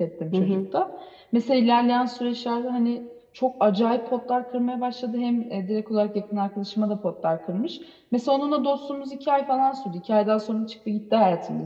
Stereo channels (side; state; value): both; identical; correlation 1.00